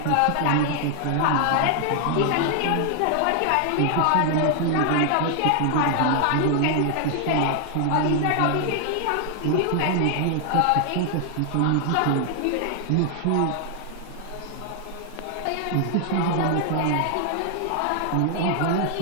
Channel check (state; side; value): different; both; correlation 0.00